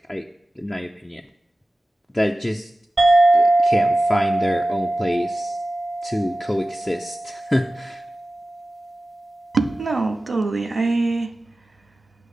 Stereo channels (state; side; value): normal; both; correlation 0.96